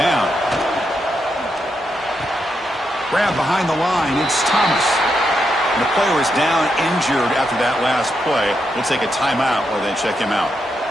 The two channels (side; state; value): both; normal; correlation 0.83